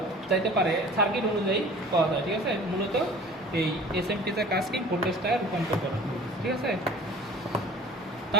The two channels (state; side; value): normal; both; correlation 0.45